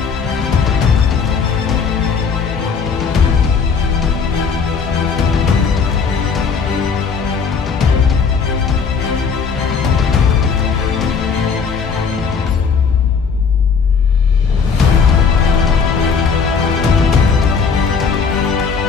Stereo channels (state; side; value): quieter; right; 5.7 dB